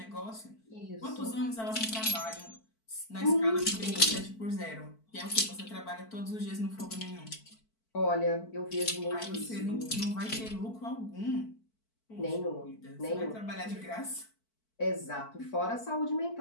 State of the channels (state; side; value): late; right; 4.5 ms